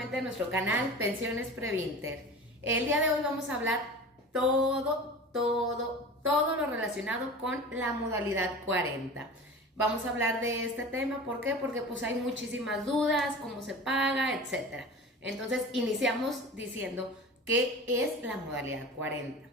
a nuestro canal Pensiones Previnter. El día de hoy vamos a hablar todo lo relacionado con la modalidad 40. Vamos a hablar de este tema, ¿por qué? Porque pues hay muchísimas dudas, cómo se paga, etcétera. Entonces iniciamos diciendo qué es la modalidad 40.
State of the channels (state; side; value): normal; both; correlation 0.36